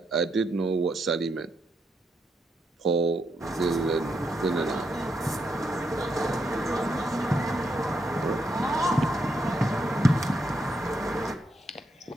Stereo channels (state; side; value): normal; both; correlation 0.80